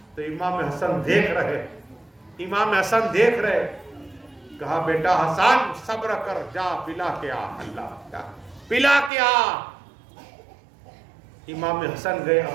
تو امام حسن دیکھ رہے کہا بیٹا حسن صبر کر جا پلا کے آ. اللہ پلا کے آ. امام حسن گئے.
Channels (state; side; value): drops out; left; at 9.1 s